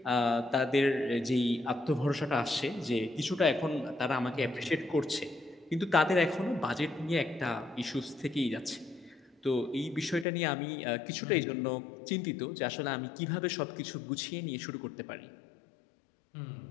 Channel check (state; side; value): drops out; right; at 10.2 s